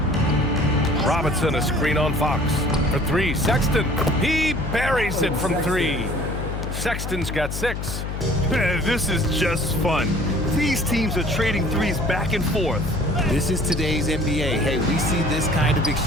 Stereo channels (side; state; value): left; noise; hum, 5 dB below the sound